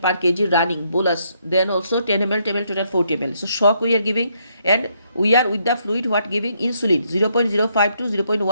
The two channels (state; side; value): inverted; both; correlation -0.74